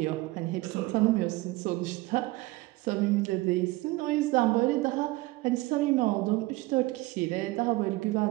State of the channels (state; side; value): quieter; left; 20.4 dB